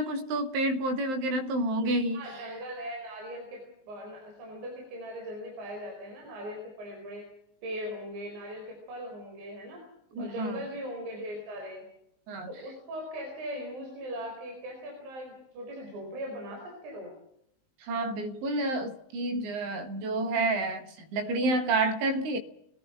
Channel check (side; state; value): left; late; 19 ms